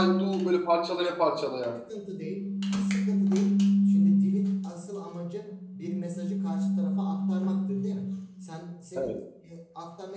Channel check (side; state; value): both; identical; correlation 1.00